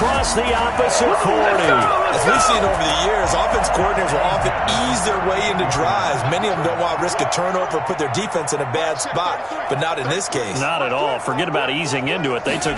the opposite 40. As we've seen over the years, offense coordinators will often ease their way into drives. Many of them don't want to risk a turnover or put their defense in a bad spot, but not in this case. Not at all. Forget about easing into it. They took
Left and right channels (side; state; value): both; identical; correlation 1.00